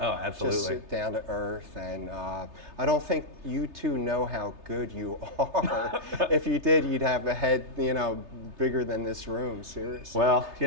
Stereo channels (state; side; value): late; left; 3.3 ms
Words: absolutely. Just down to earth. And I don't think you two know how good you are. If you did, you'd have a head, you know, bigger than this room, seriously. Well, you